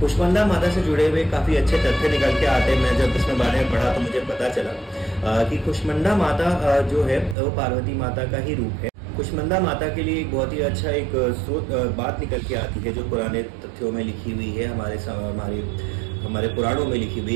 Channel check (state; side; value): drops out; left; at 7.4 s